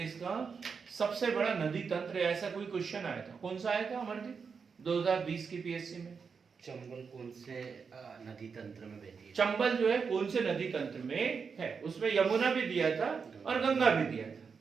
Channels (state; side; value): quieter; left; 5.7 dB